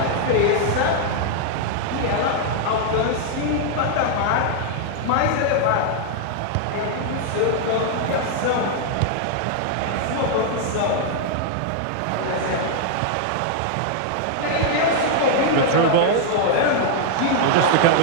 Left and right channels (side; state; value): both; different; correlation -0.01